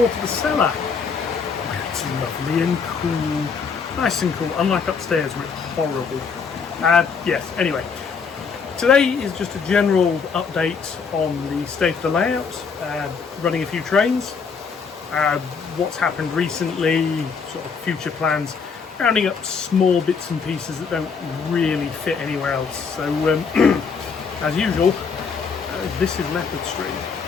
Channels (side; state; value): right; quieter; 5.6 dB